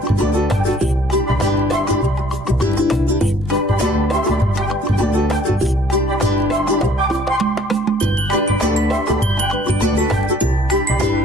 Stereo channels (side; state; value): both; normal; correlation 0.57